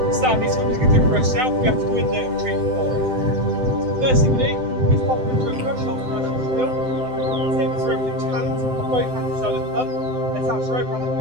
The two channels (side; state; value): left; late; 7.8 ms